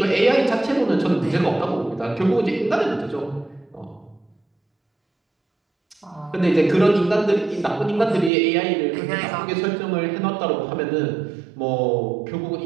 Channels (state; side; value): drops out; left; at 8.3 s